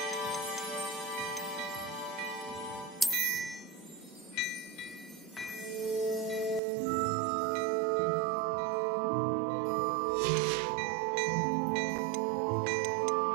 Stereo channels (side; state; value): left; drops out; at 6.6 s